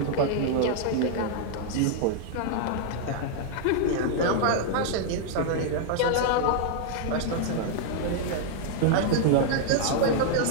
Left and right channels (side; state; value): both; different; correlation -0.01